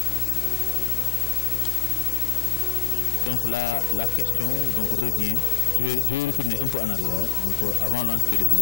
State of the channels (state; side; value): quieter; right; 13.9 dB